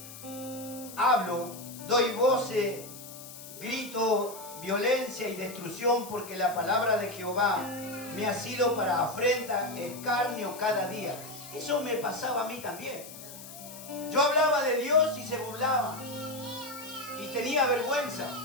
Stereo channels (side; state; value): left; noise; hiss, 14 dB below the sound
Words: hablo, doy voces, grito violencia y destrucción, porque la palabra de Jehová me ha sido para afrenta, escarnio cada día. Eso me pasaba a mí también. Yo hablaba de Dios y se burlaba, y tenía vergüenza.